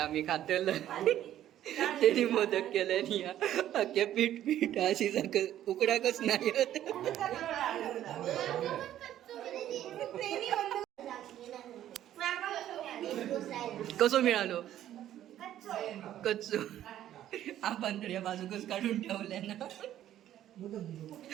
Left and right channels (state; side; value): quieter; left; 12.0 dB